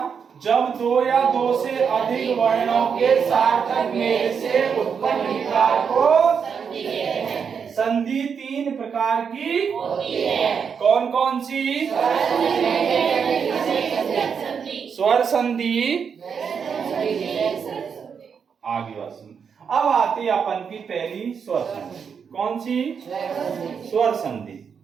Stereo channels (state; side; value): quieter; left; 6.6 dB